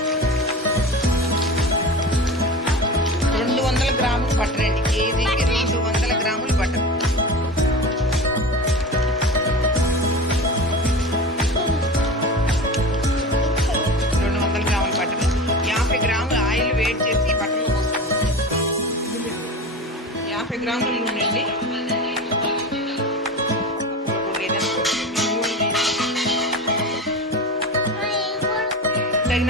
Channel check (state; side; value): normal; both; correlation 0.30